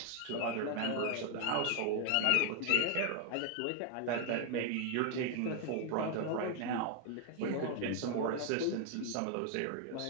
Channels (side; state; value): both; different; correlation 0.01